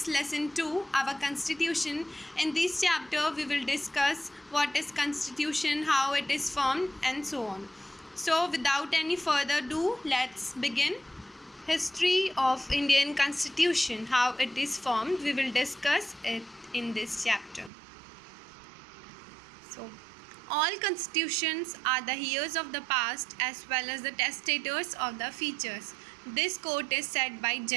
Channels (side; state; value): left; drops out; at 17.7 s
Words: Lesson 2, our Constitution. In this chapter we will discuss what is Constitution, how it is formed and so on. So without any further ado, let's begin. History of Indian Constitution, how it is formed, we will discuss it in this chapter. So, all constitutions are the heirs of the past as well as the testators of the futures. This quote is said by